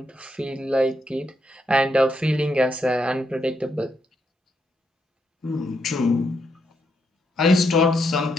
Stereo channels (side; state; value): both; normal; correlation 0.79